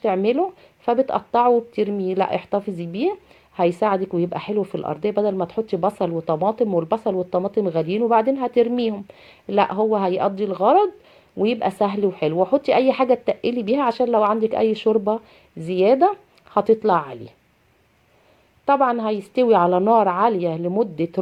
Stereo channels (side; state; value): both; identical; correlation 1.00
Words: فبتقطعه وبترميه، لا احتفظي بيه هيساعدك ويبقى حلو في الارضيه، بدل ما تحطي بصل وطماطم، والبصل والطماطم غاليين وبعدين هترميهم، لا هو هيقضي الغرض ويبقى سهل وحلو. وحطي اي حاجه تقلي بيها عشان لو عندك اي شوربه زياده هتطلع عليه. طبعا هيستوي على نار عالية لمدة